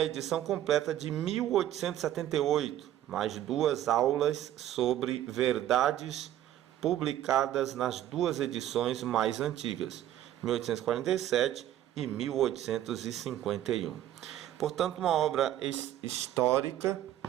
edição completa de 1878, mais 2 aulas sobre verdades publicadas nas 2 edições mais antigas, 1847 e 1851. Portanto, uma obra histórica,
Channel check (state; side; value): quieter; left; 12.3 dB